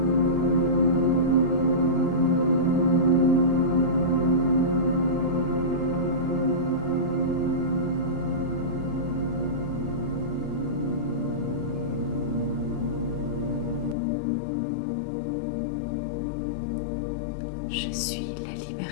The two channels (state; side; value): drops out; right; at 14.0 s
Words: Je suis la